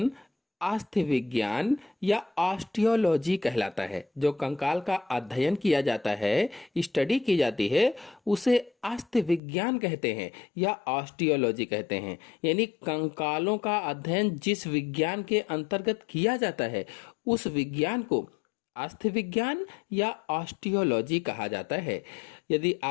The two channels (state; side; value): drops out; right; at 9.4 s